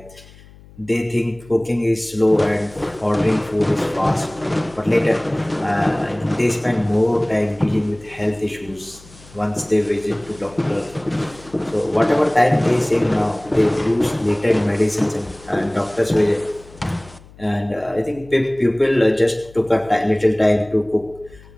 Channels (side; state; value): left; noise; hum, 23 dB below the sound